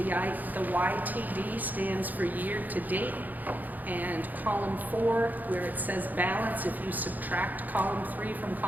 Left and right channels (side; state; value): left; late; 0.083 ms